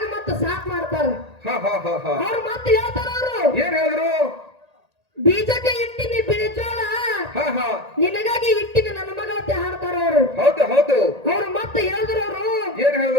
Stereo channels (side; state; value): left; late; 1.8 ms